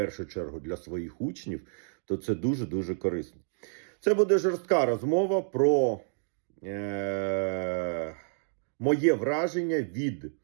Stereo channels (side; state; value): left; silent; digital silence